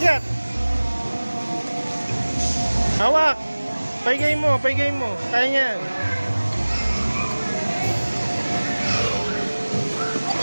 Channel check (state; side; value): inverted; both; correlation -1.00